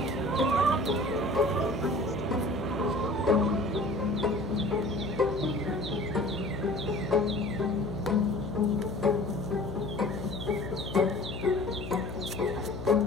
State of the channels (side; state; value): left; noise; hum, 8 dB below the sound